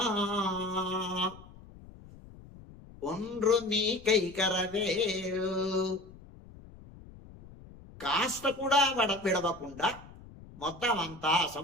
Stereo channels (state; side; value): noise; left; rumble, 19 dB below the sound